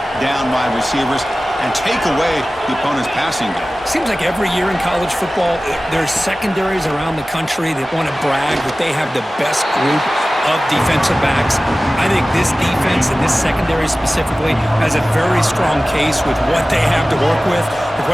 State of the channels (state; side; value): normal; both; correlation 0.97